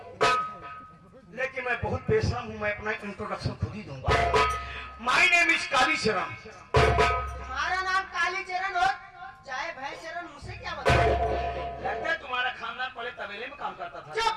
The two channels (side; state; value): both; identical; correlation 1.00